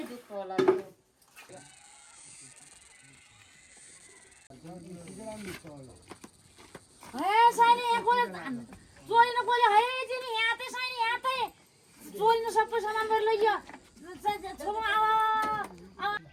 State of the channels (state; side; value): identical; both; correlation 1.00